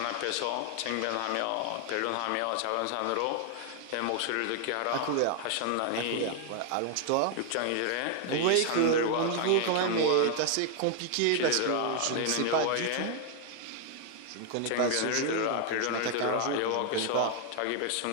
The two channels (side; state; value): both; different; correlation 0.00